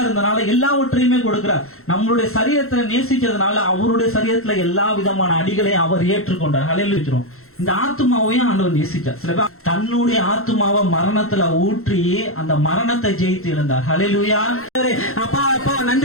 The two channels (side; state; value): right; late; 0.62 ms